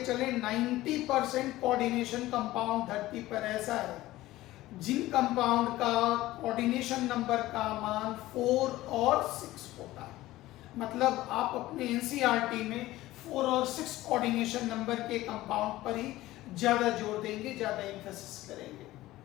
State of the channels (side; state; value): right; quieter; 16.7 dB